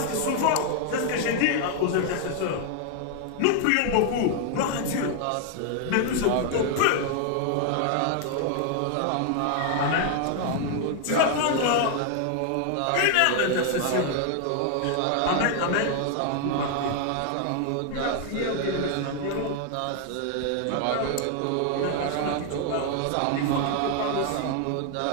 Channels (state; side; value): different; both; correlation 0.00